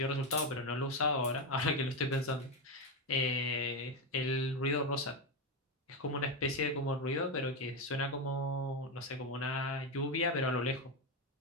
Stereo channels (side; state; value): both; normal; correlation 0.10